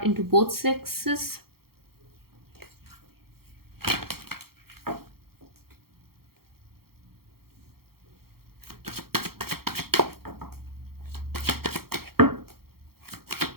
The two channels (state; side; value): late; left; 0.94 ms